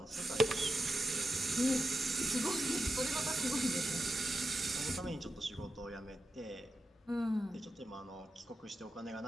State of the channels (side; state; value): both; normal; correlation 0.89